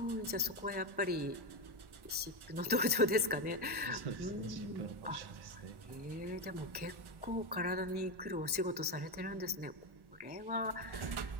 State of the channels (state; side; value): late; left; 1.1 ms